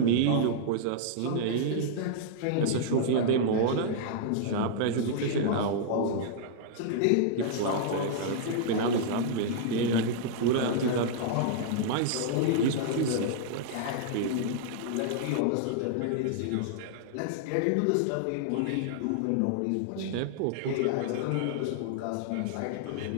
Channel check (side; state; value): both; different; correlation -0.01